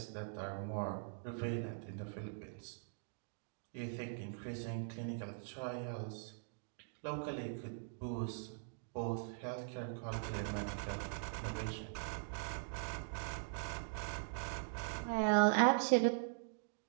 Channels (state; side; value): silent; left; digital silence